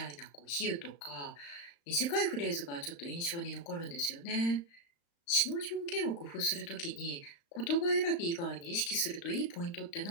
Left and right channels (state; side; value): late; right; 35 ms